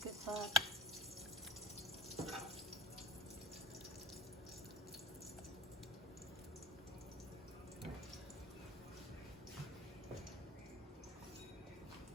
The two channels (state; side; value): normal; both; correlation 0.43